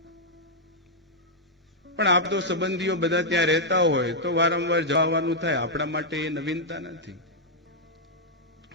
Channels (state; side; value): normal; both; correlation -0.05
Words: પણ આપ તો સંબંધીઓ બધા ત્યાં રહેતા હોય તો વારંવાર જવાનું થાય. આપણા માટે એ નવીનતા નથી.